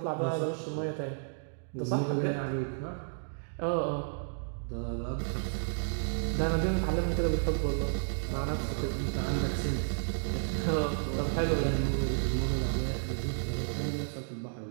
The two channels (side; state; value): left; silent; digital silence